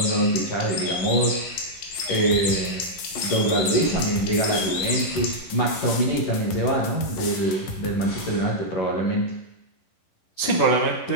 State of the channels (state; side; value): late; right; 11 ms